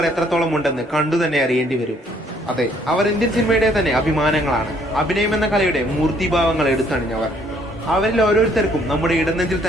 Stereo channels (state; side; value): normal; both; correlation 0.64